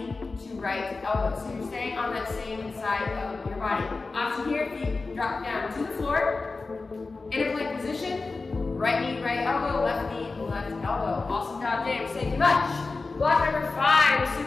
to right elbow. So you're staying on that same side of your body. Option here, feet drop down to the floor. In a plank position. Right knee, right elbow, left knee, left elbow. Awesome job, James. Thank you much. Block number 5 is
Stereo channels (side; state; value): right; quieter; 3.8 dB